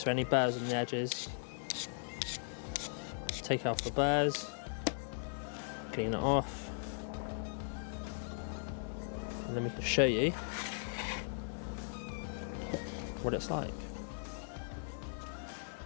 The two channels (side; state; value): right; silent; digital silence